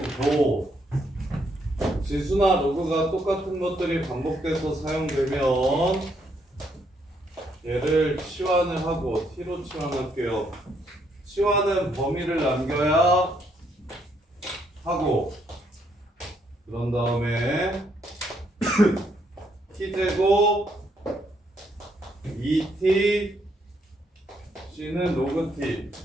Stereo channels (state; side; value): normal; both; correlation 0.73